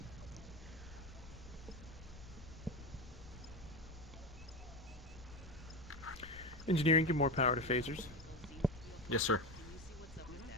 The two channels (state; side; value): noise; left; rumble, 17 dB below the sound